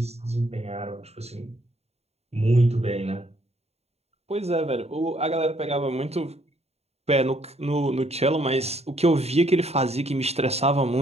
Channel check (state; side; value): late; left; 0.30 ms